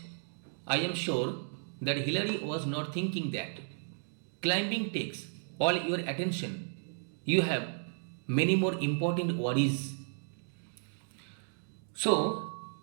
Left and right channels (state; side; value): silent; left; digital silence